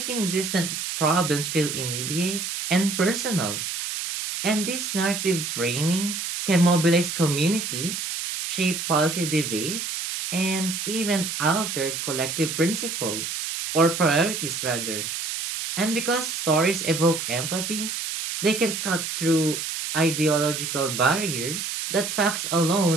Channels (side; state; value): right; noise; hiss, 4 dB below the sound